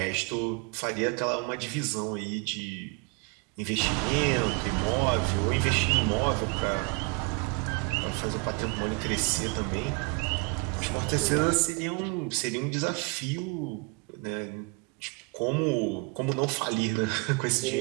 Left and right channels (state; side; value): quieter; left; 29.2 dB